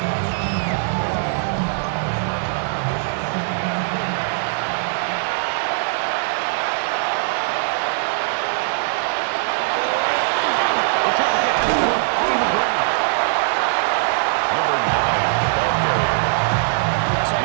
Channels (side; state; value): left; silent; digital silence